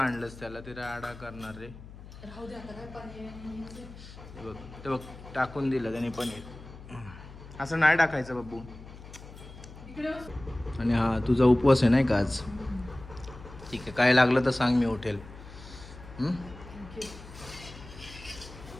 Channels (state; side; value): noise; left; hum, 16 dB below the sound